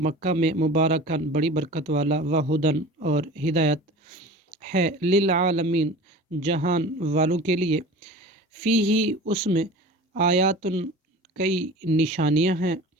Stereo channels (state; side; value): normal; both; correlation 0.38